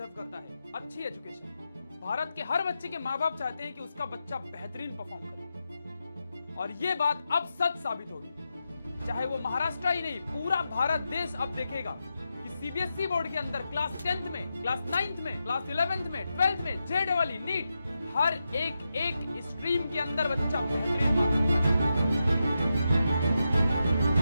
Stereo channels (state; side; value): inverted; both; correlation -0.88